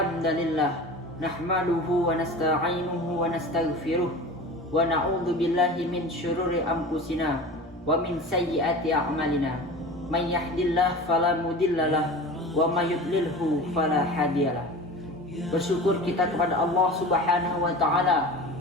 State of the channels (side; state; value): both; normal; correlation 0.35